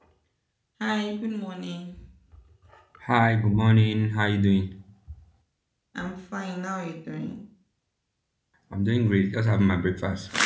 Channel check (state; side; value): identical; both; correlation 1.00